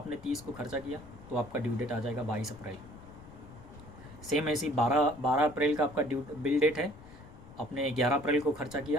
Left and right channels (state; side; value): noise; left; rumble, 19 dB below the sound